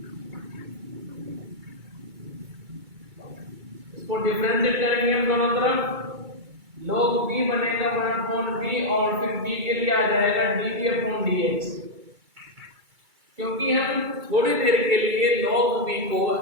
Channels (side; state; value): left; late; 2.3 ms